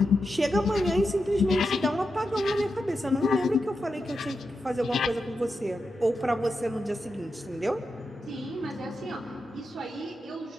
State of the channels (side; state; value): both; normal; correlation 0.88